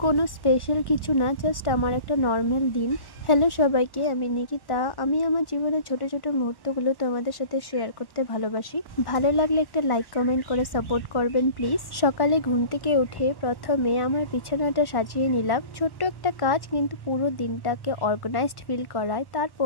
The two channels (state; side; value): late; right; 1.1 ms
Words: কোনো স্পেশাল কিছু না, জাস্ট আমার একটা নর্মাল দিন। হ্যালো সবাইকে, আমি নিকিতা। আমি আমার জীবনের ছোট ছোট মুহূর্তগুলো তোমাদের সাথে শেয়ার করতে ভালোবাসি। ভালো লাগলে একটা লাইক কমেন্ট করে সাপোর্ট করবেন প্লিজ। সকালে ঘুম থেকে উঠে প্রথমে আমার বিছানাটা সাজিয়ে নিলাম। ছোট্ট একটা কাজ কিন্তু পুরো দিনটাকে অর্গানাইজড ফিল করায়।